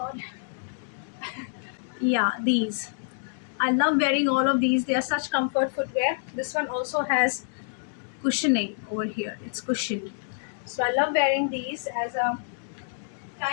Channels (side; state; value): right; silent; digital silence